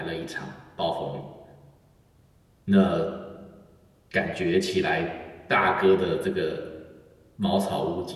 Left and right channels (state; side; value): identical; both; correlation 1.00